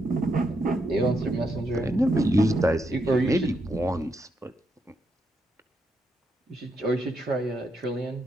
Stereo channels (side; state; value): both; normal; correlation 0.80